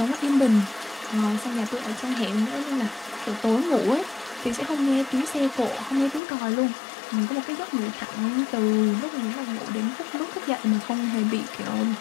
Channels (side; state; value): right; drops out; at 6.2 s